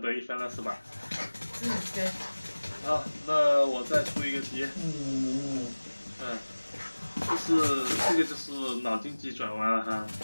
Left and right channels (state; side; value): inverted; both; correlation -1.00